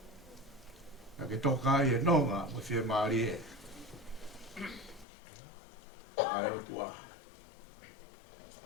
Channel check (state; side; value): drops out; right; at 5.1 s